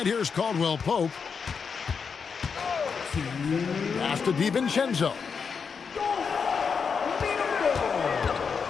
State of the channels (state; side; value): quieter; right; 5.9 dB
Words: here's Caldwell Pope. Pass to DiVincenzo.